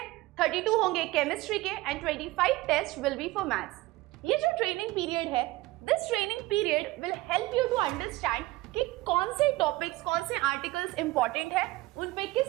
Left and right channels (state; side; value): quieter; left; 19.6 dB